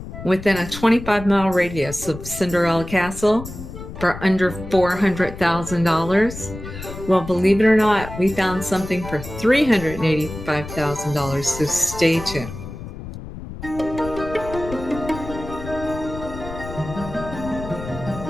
within a 25-mile radius of Cinderella Castle for under $400,000? Well, believe it or not, we found something for $385,000, so stay tuned.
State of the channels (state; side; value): noise; left; rumble, 11 dB below the sound